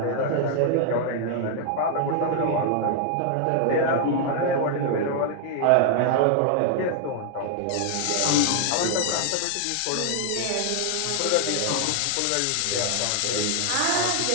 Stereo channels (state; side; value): different; both; correlation 0.00